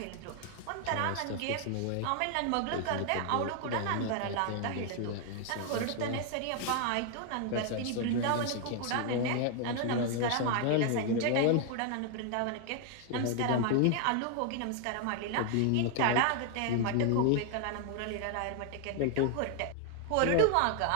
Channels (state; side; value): different; both; correlation 0.00